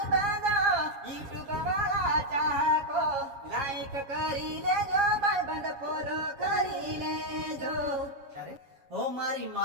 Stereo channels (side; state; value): left; late; 7.3 ms